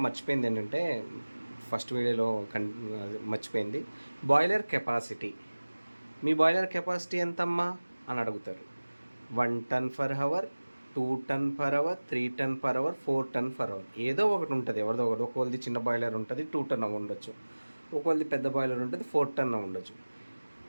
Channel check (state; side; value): inverted; both; correlation -1.00